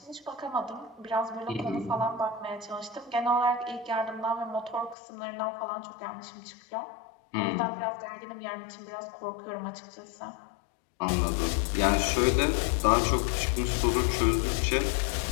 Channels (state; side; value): drops out; right; at 5.0 s